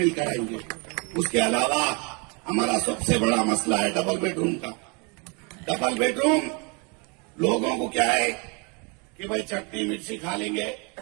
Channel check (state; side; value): quieter; left; 32.3 dB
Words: कराएंगे। उसके अलावा हमारा सबसे बड़ा मसला है डबल बेडरूम का। डबल बेडरूम लोगों को क्या है कि भाई चटनी मिर्ची खा लेंगे,